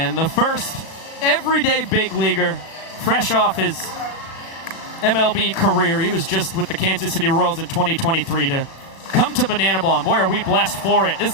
the first everyday big leaguer, fresh off his MLB career. He was just with the Kansas City Royals in 2023 to come to Banana Ball, and boy, are we blessed for it. This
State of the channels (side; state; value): right; late; 36 ms